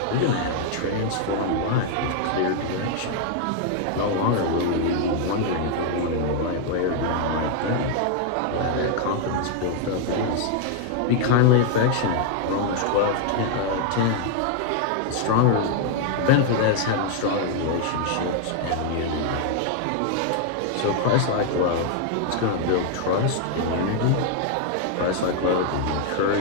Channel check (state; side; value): different; both; correlation 0.00